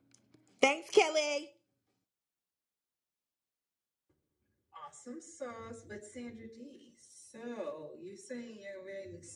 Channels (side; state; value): both; identical; correlation 1.00